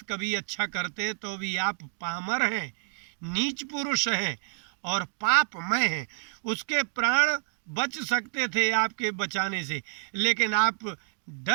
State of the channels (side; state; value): left; silent; digital silence